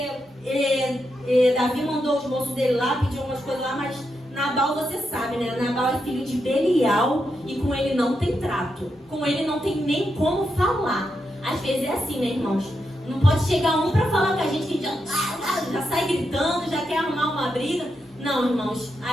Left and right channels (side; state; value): both; normal; correlation 0.84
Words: Davi mandou os moços dele lá, pediu umas coisas lá, mas Nabal, você sabe, né? Nabal é filho de Belial e com ele não tem trato. Com ele não tem nem como falar. Às vezes é assim, né, irmãos? Não pode chegar um pra falar com a gente que já sai gritando, já quer arrumar uma briga. Não, irmãos.